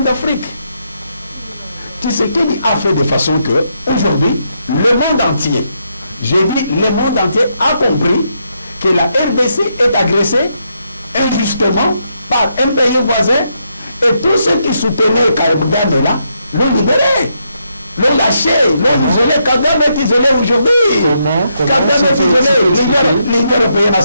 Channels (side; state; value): both; inverted; correlation -0.79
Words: d'Afrique. Tu sais qu'il a fait de façon que, aujourd'hui, le monde entier, j'ai dit, le monde entier a compris que la RDC est agressée injustement par un pays voisin et tous ceux qui soutenaient Kabila là, l'ont libéré, l'ont lâché, l'ont isolé. Kagame est isolé aujourd'hui. Kagame est isolé. L'Union européenne a